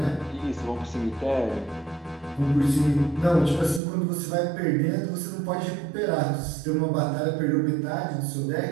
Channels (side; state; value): left; drops out; at 3.8 s